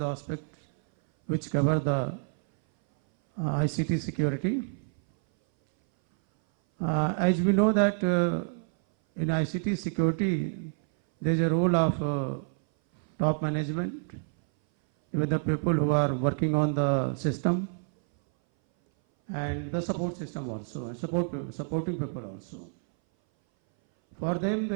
aspects which cover the ICT security. As we know that in ICT security there is a role of top management, even the people who are working on the system and the support system also, and supporting people also. For them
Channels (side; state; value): left; silent; 58 dB below the other